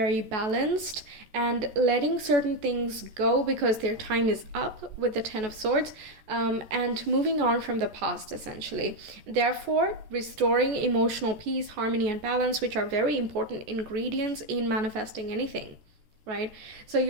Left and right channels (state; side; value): late; left; 14 ms